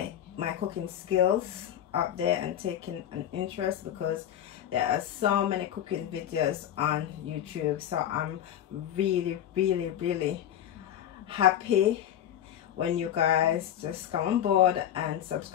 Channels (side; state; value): right; quieter; 10.8 dB